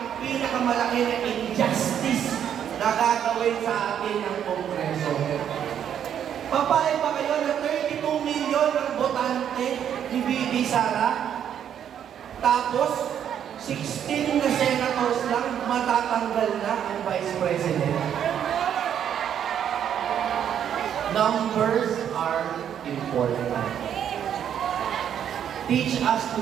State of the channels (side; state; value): left; quieter; 9.2 dB